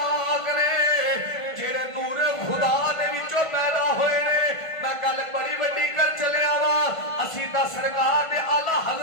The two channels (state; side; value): late; right; 1.5 ms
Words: ने जेड़े नूर खुदा दे विचों पैदा होए ने। मैं गल बड़ी वड्डी कर चलिया वा असी दा सरकार दे आला